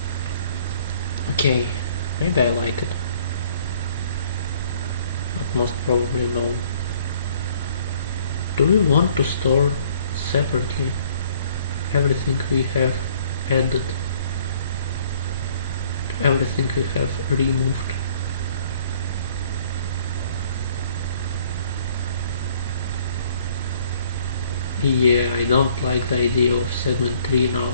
Okay, maybe I like it, but most probably no. Do we want to store separately everything we have added, everything we have removed? Yeah, I don't like the idea of segment 3 now.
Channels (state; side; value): inverted; both; correlation -0.58